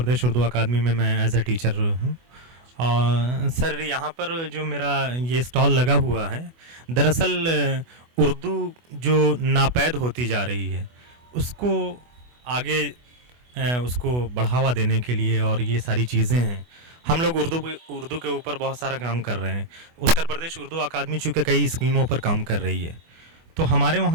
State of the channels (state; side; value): late; left; 24 ms